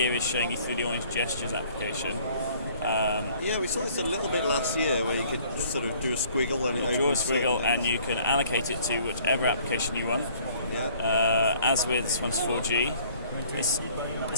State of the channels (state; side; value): inverted; both; correlation -0.56